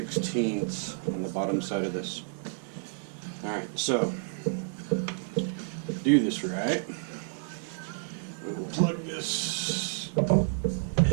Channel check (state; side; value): silent; left; 58 dB below the other